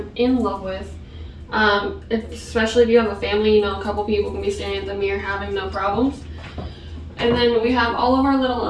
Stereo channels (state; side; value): identical; both; correlation 1.00